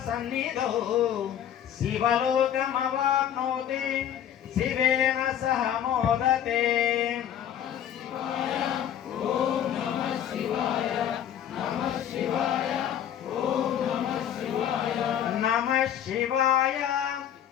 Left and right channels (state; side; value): quieter; right; 10.0 dB